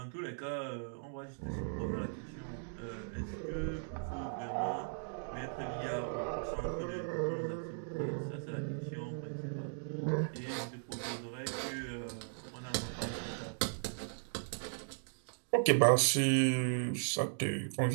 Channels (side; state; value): left; silent; digital silence